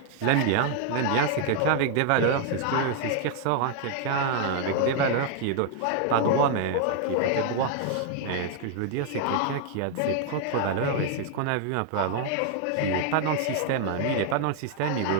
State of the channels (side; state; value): both; different; correlation 0.00